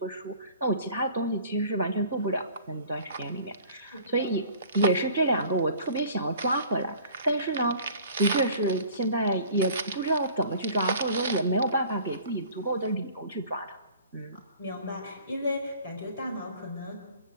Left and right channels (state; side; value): inverted; both; correlation -0.49